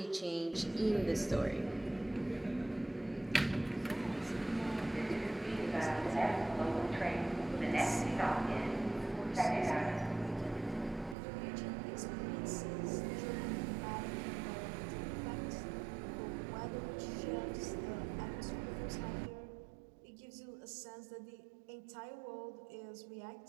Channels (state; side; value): drops out; left; at 11.2 s